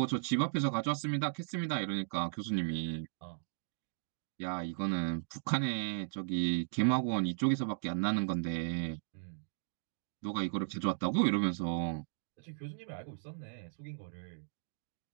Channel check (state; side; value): silent; left; digital silence